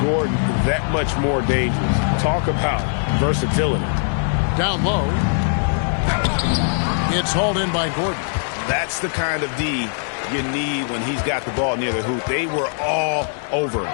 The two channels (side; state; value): right; silent; 65 dB below the other